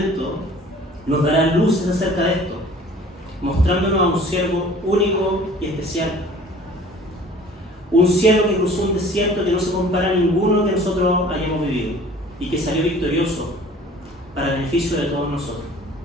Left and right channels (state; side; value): normal; both; correlation 0.49